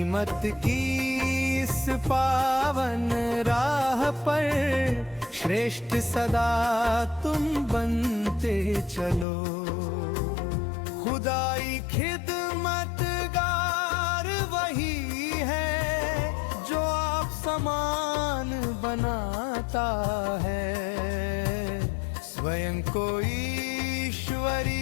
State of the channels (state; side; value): drops out; right; at 9.2 s